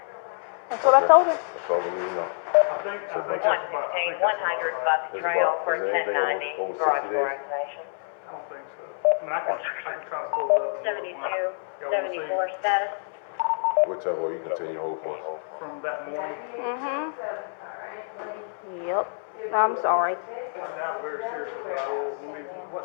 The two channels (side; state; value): right; silent; 60 dB below the other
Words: That's what I told him. That's all we need to know. I think that's about. 116, 100 Buck Trail for Is there anything 1090. over 60 Garage door days? activation. I don't think so. I mean, I can try to pull it up. And 72, look. Y'all wanna see 74 status. Whichever way you continue to hold for us. from that morning? Yep. I'm sorry. I doubt very seriously, but I will.